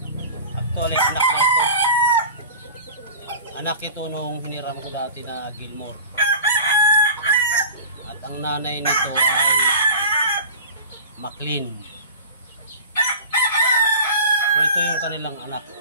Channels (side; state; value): both; inverted; correlation -0.37